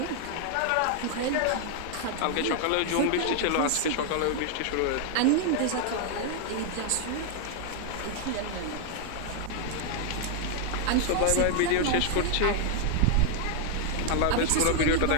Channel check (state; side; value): different; both; correlation 0.00